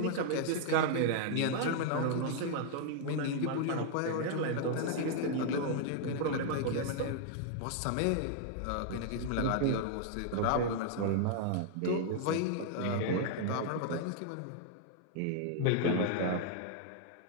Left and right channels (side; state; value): both; different; correlation -0.01